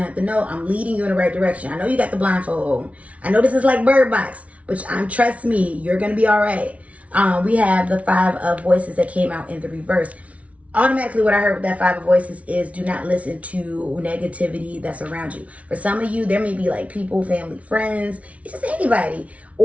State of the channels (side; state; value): left; late; 0.065 ms